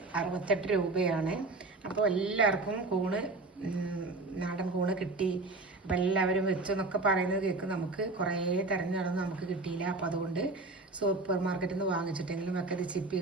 68 രൂപയാണ്. അപ്പോൾ എല്ലാവർക്കും കൂണ്, നാടൻ കൂണ് കിട്ടി, അപ്പം എല്ലാവരും വെച്ചെന്നൊക്കെ പറയുന്നത് കേൾക്കും. നമുക്ക് കുറേ തിരഞ്ഞെടുന്ന് നമുക്ക് കിട്ടിയില്ല. അപ്പോൾ അതുകൊണ്ട് സൂപ്പർ മാർക്കറ്റിൽ നിന്ന് വാങ്ങിച്ചിട്ടെങ്കിലും ഒക്കെ ഇത് ചിപ്പി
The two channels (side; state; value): left; quieter; 3.3 dB